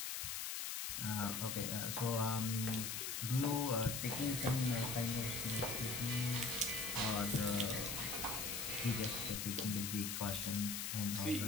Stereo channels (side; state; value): left; noise; hiss, 2 dB below the sound